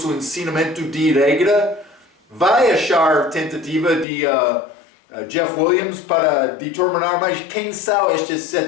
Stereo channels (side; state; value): right; drops out; at 4.0 s